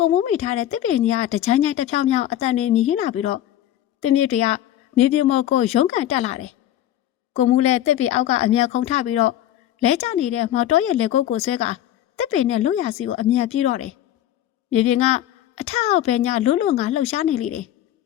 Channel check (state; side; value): quieter; right; 12.3 dB